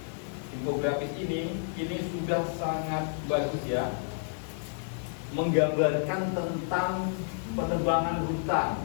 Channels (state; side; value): silent; right; digital silence